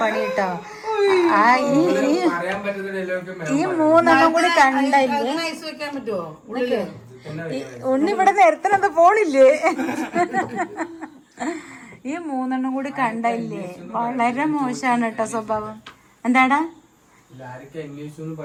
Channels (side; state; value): both; identical; correlation 1.00